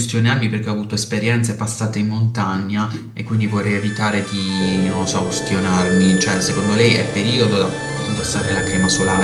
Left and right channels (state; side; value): identical; both; correlation 1.00